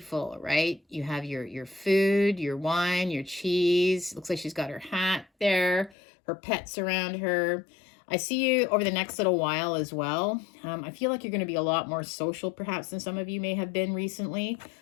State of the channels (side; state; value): right; drops out; at 6.0 s